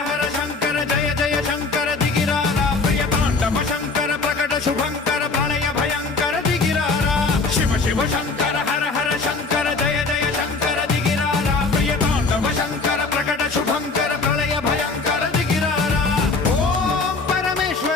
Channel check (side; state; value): right; quieter; 4.0 dB